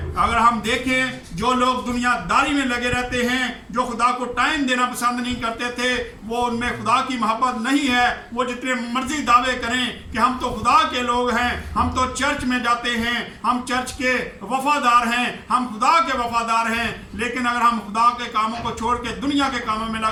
अगर हम देखें जो लोग दुनियादारी में लगे रहते हैं, जो खुदा को टाइम देना पसंद नहीं करते थे, वो उनमें खुदा की मोहब्बत नहीं है। वो जितने मर्जी दावे करें कि हम तो खुदा के लोग हैं, हम तो चर्च में जाते हैं, हम चर्च के वफादार हैं, हम खुदा के वफादार हैं, लेकिन अगर हम खुदा के कामों को छोड़ के दुनिया के कामों में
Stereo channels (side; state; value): both; identical; correlation 1.00